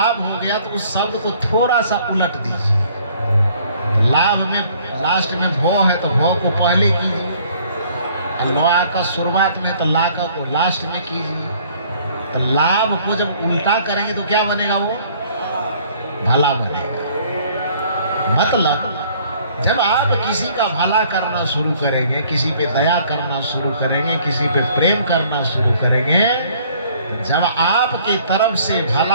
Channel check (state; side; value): inverted; both; correlation -0.59